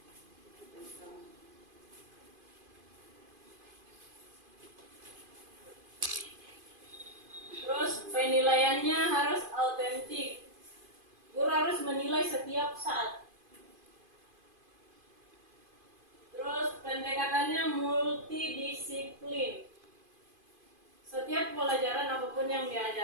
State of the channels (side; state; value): left; late; 2.5 ms